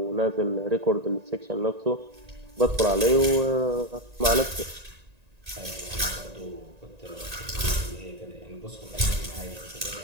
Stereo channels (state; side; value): late; left; 1.9 ms